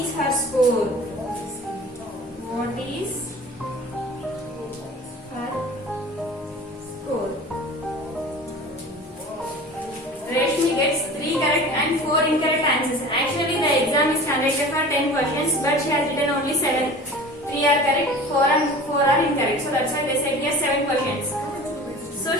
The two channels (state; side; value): normal; both; correlation 0.40